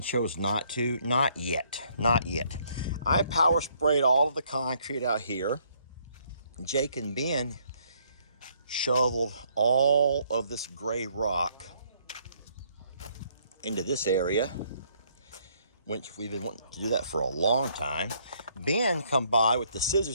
chose not to. Not yet. I power sprayed all of the concrete out here. Jake and Ben shoveled all of this gray rock into this area, which we've been wanting to do that for a long time. Ben come by with the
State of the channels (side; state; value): both; inverted; correlation -0.67